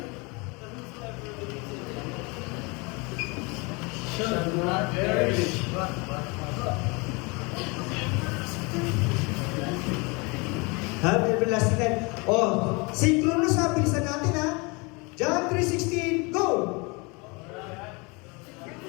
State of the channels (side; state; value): right; quieter; 28.5 dB